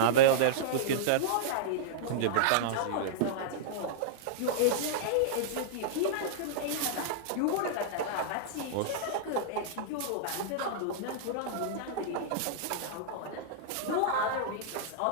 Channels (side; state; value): both; different; correlation -0.02